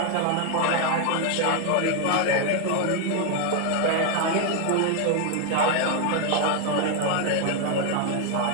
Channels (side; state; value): both; different; correlation 0.01